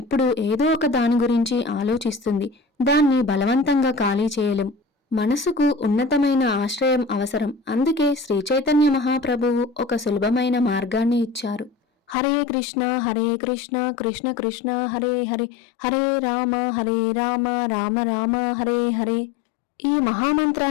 ఏదో ఒక దాని గురించి ఆలోచిస్తుంది. దాన్ని బలవంతంగా ఖాళీ చేయలేం. మనసుకు ఉన్నతమైన ఆశ్రయం అవసరం. అందుకే శ్రీ చైతన్య మహాప్రభువు ఒక సులభమైన మార్గాన్ని ఇచ్చారు. హరే కృష్ణ కృష్ణ కృష్ణ హరే హరే, హరే రామ రామ రామ హరే హరే. ఈ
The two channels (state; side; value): drops out; right; at 12.2 s